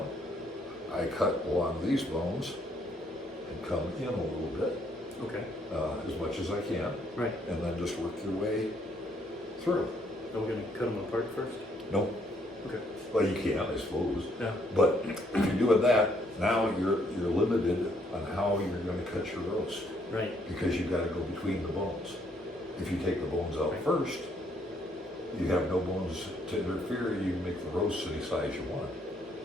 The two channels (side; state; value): both; normal; correlation 0.69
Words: I cut along these bones and come in a little bit, Okay. as much as I can, Right. and then just work your way through. Are we gonna cut them apart first? No, Okay. well, you can, I suppose, Yeah. but if you're doing that, now you're limited on how you're going to cut your roast, Right. because you've got to go between the bones. If you take the bones out Right. first, you have no bones to interfere. You can make the roast any size you want.